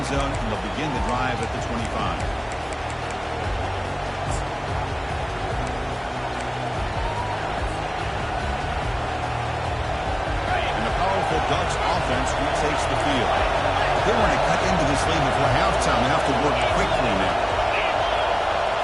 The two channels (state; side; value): identical; both; correlation 1.00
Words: zone, and they'll begin the drive at the 25. Ducks offense retakes the field. They want to cut into this lead before halftime. They have to work quickly now.